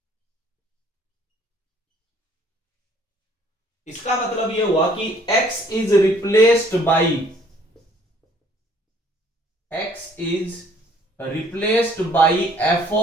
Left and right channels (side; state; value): both; normal; correlation 0.60